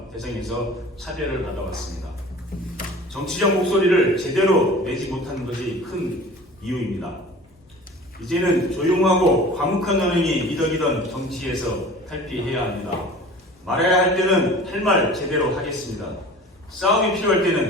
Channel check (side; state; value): both; normal; correlation 0.42